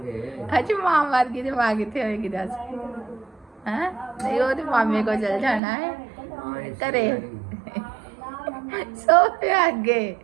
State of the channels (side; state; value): left; drops out; at 5.6 s